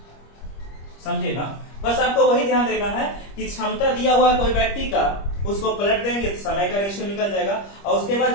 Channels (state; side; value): late; right; 25 ms